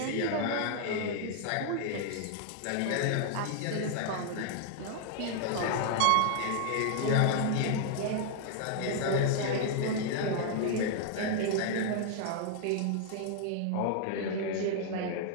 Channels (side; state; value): both; different; correlation 0.00